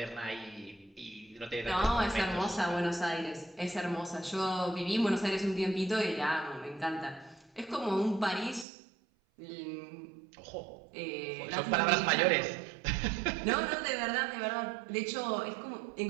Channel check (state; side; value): drops out; left; at 8.7 s